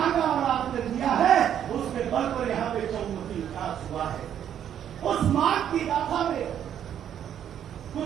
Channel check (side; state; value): left; quieter; 9.7 dB